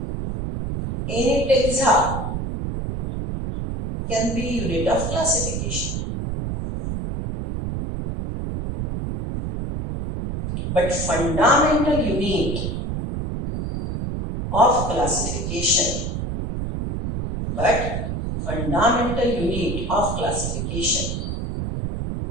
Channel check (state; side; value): noise; right; rumble, 3 dB below the sound